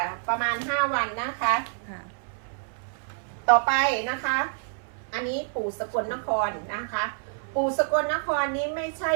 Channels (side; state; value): left; silent; 60 dB below the other